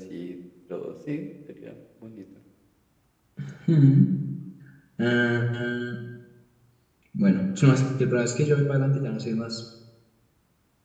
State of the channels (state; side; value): identical; both; correlation 1.00